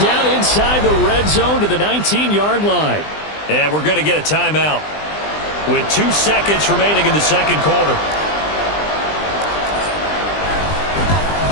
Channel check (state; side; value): late; right; 20 ms